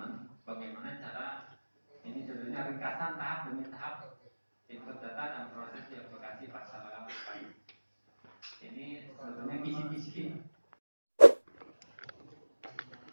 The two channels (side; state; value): both; inverted; correlation -1.00